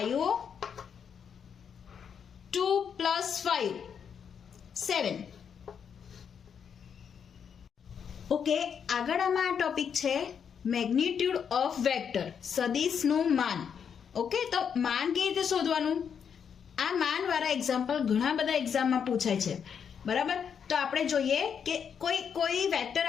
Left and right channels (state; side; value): quieter; right; 7.4 dB